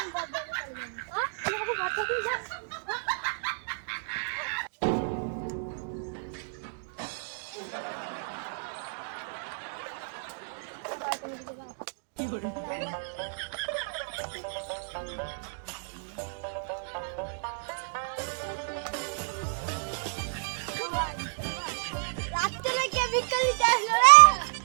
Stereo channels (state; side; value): silent; left; digital silence